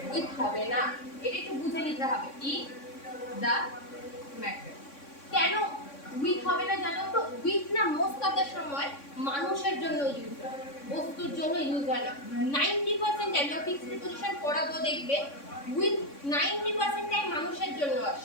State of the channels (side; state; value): right; late; 3.6 ms